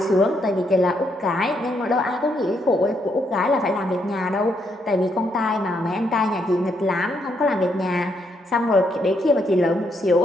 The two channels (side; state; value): both; normal; correlation 0.76